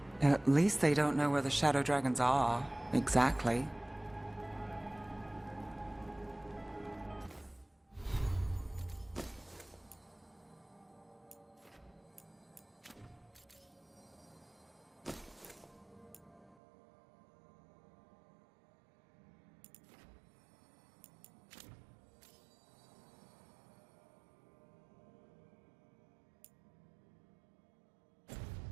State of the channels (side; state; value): left; drops out; at 16.6 s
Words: At least they don't know where the shadow dragons are, exactly.